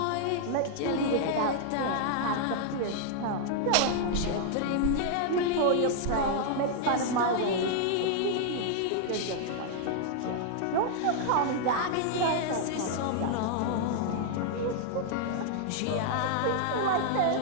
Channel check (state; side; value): different; both; correlation -0.01